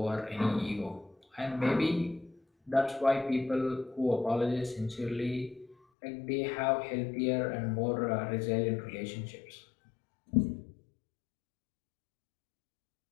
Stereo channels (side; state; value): right; drops out; at 5.8 s